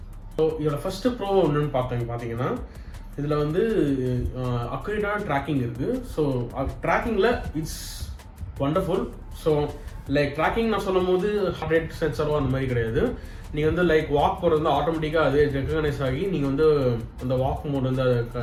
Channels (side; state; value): both; identical; correlation 1.00